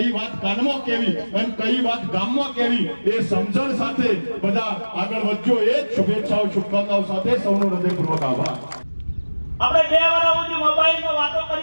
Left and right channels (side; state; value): both; inverted; correlation -1.00